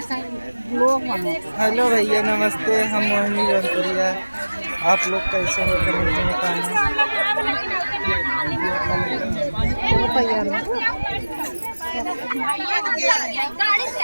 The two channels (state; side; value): inverted; both; correlation -1.00